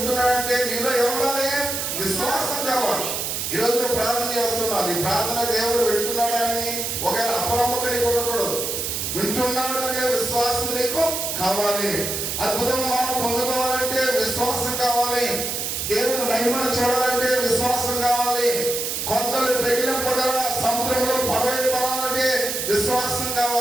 నీలో ఏముండాలి? విశ్వాసం కావాలి. ఈరోజు నువ్వు ప్రార్థన చేస్తున్నావు, నీ ప్రార్థన దేవుడు వింటున్నాడని ఒకవేళ అపనమ్మకం నీకు ఉండకూడదు. వింటున్నాడు అనే విశ్వాసం నీకు కావాలి. అద్భుతం మనం పొందుకోవాలంటే విశ్వాసం కావాలి. దేవుని మహిమను చూడాలంటే విశ్వాసం కావాలి. కొండలు పెగిలింపగల సముద్రంలో పడవలు పడాలంటే విశ్వాసం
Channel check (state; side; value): noise; right; hiss, 2 dB below the sound